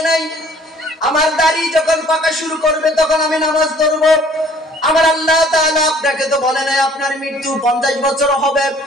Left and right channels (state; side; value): normal; both; correlation 0.56